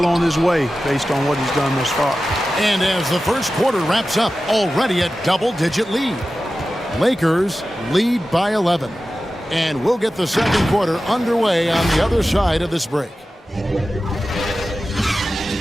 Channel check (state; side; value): normal; both; correlation 0.94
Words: on his way based on what he's done thus far. And as the first quarter wraps up, already a double-digit lead. Lakers lead by 11. And we'll get the second quarter underway on the other side of this break.